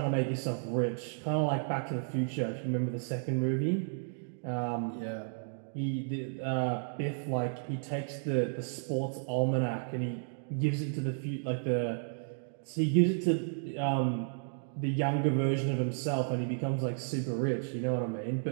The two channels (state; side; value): silent; left; digital silence